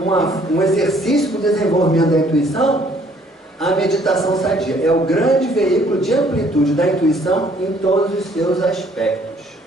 exercício para o desenvolvimento da intuição, a meditação sadia. É o grande veículo de amplitude da intuição em todos os seus aspectos.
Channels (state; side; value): normal; both; correlation 0.61